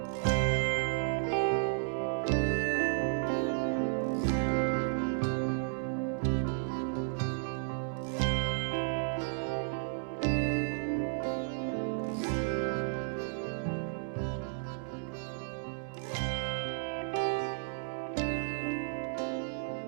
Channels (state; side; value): silent; left; digital silence